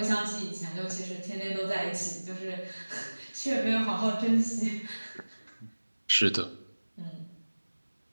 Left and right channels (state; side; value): inverted; both; correlation -1.00